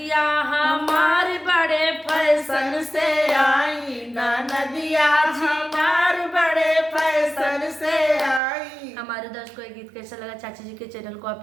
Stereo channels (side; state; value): left; drops out; at 8.4 s